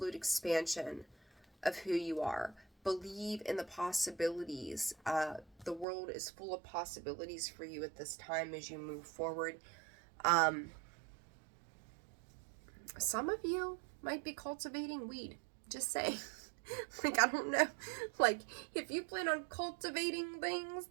expansion of who you are. Believe in the possibilities. The world is full of possibilities for you at this time as you move forward. Some of you might be cultivating weed. Just saying. Like, I don't know. Like, if you plan on cultivating things,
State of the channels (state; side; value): drops out; left; at 5.9 s